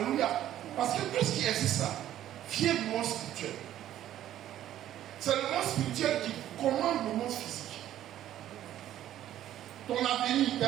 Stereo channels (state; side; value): quieter; left; 12.2 dB